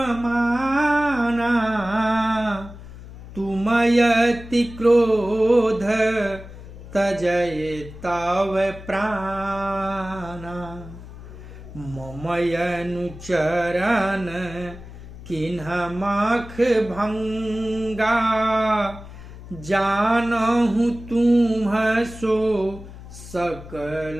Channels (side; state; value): left; noise; hum, 15 dB below the sound